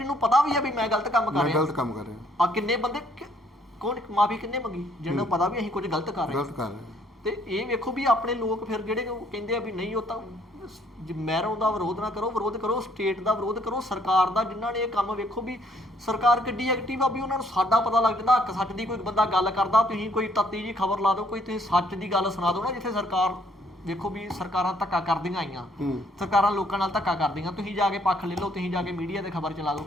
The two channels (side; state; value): both; normal; correlation 0.66